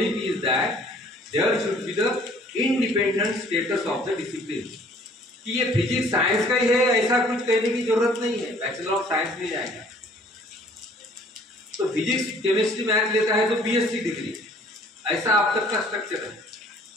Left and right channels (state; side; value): normal; both; correlation 0.56